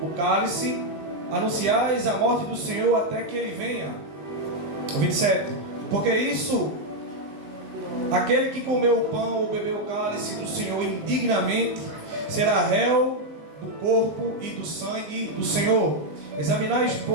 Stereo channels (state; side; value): late; left; 20 ms